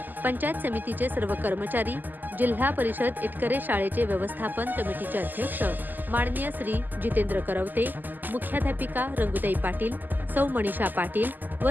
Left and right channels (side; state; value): left; late; 0.087 ms